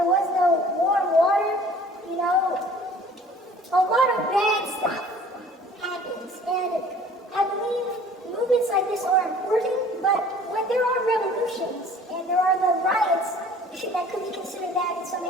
was no warm water, a lot of bad stuff happens. And I believe movements like this are important, but when there are revolutions and there are the riots that could be considered that in some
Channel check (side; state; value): both; normal; correlation 0.50